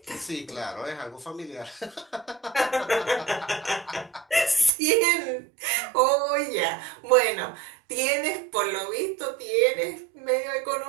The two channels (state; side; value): drops out; left; at 4.7 s